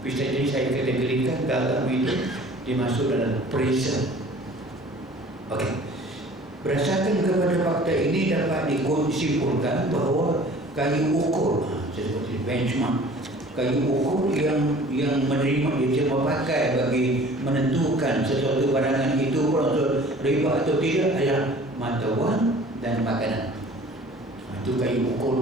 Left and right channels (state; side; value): normal; both; correlation 0.48